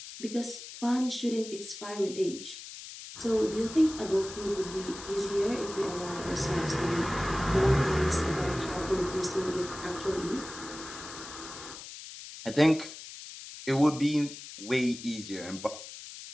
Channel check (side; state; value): left; noise; hiss, 13 dB below the sound